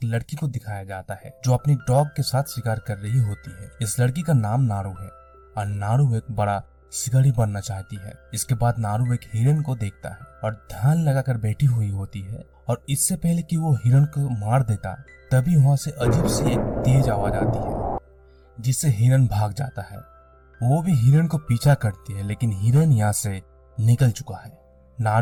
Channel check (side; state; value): both; identical; correlation 1.00